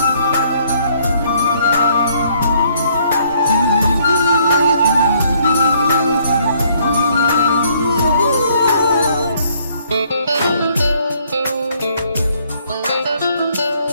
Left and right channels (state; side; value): inverted; both; correlation -0.66